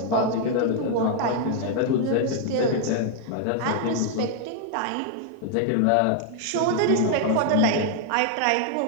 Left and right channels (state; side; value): different; both; correlation 0.00